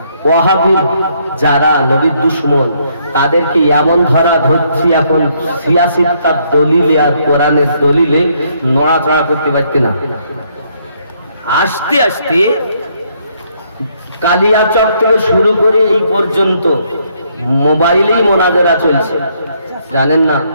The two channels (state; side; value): inverted; both; correlation -0.71